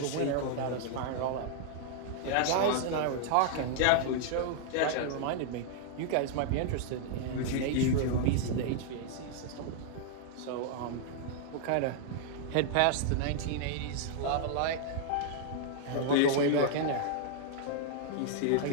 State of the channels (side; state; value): both; different; correlation -0.01